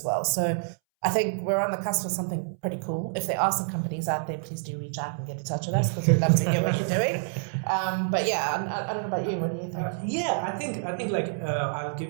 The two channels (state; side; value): silent; left; 60 dB below the other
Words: well. So I think we're on the cusp of something pretty cool. If there are some companies out there, please do reach out and get in touch with us because we'd love to hear what you're doing. But yeah, I don't know about you. What do you think? I think like I'll give